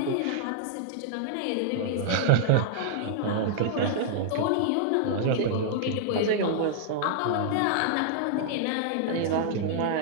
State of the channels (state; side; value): different; both; correlation -0.01